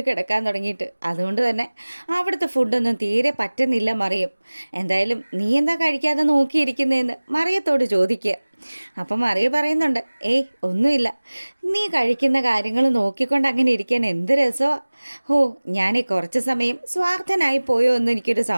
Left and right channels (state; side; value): inverted; both; correlation -1.00